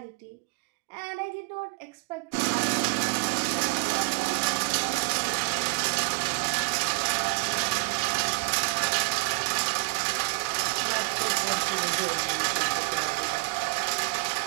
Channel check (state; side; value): quieter; left; 26.0 dB